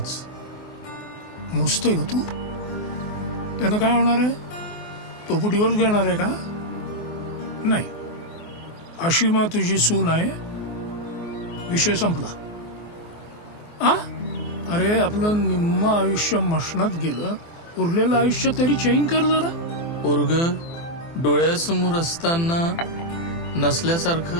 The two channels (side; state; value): right; late; 24 ms